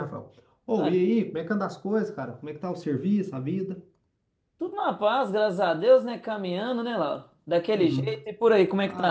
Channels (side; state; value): both; identical; correlation 1.00